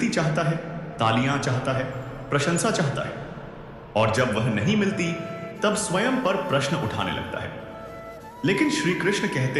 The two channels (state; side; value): identical; both; correlation 1.00